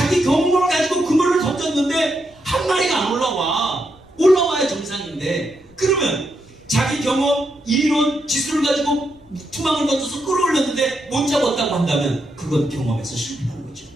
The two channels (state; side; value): noise; left; rumble, 28 dB below the sound